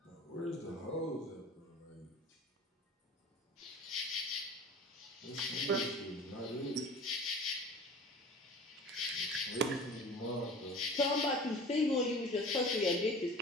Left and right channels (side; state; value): both; normal; correlation 0.40